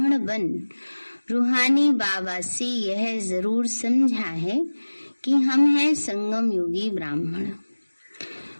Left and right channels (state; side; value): inverted; both; correlation -1.00